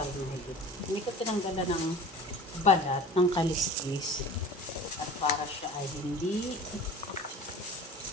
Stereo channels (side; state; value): both; normal; correlation 0.40